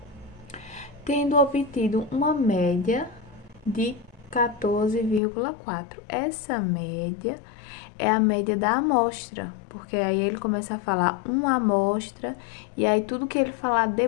tendo obtido uma média de 14,4. Essa média é a média da amostra, porque aí ele começa a falar uma amostra, e aí tudo que ele falar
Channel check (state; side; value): drops out; right; at 5.2 s